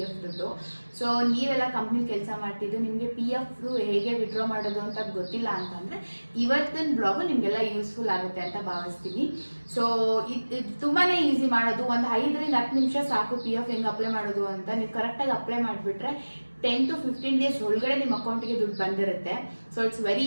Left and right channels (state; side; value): inverted; both; correlation -1.00